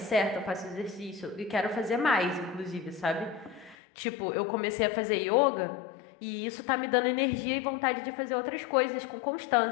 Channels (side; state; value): right; drops out; at 3.8 s